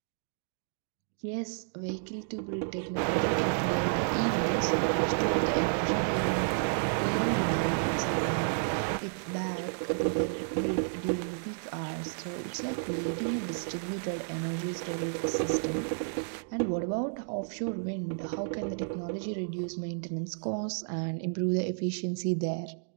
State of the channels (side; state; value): left; silent; digital silence